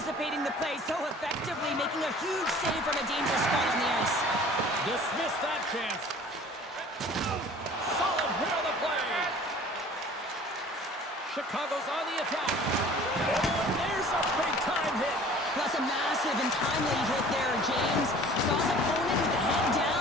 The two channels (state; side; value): normal; both; correlation 0.48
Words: the play so effectively, making a huge save from a dangerous spot on the ice. Dismiss that chance. Solid hit on the play. Chicago's on the attack. Oh, and there's a big-time hit. That's a massive and timely hit there, James. Saw his opponent with the head